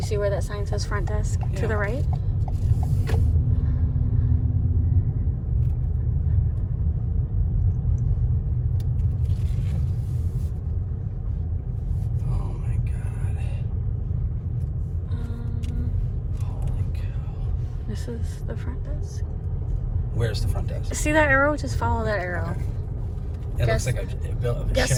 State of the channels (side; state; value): both; identical; correlation 1.00